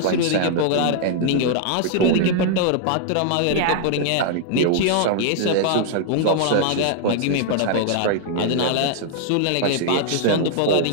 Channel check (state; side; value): different; both; correlation -0.01